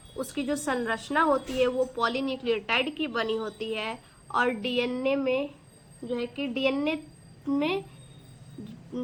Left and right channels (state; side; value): identical; both; correlation 1.00